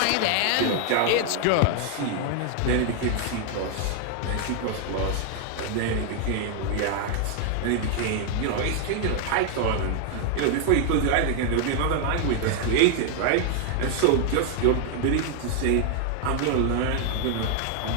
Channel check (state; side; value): different; both; correlation 0.00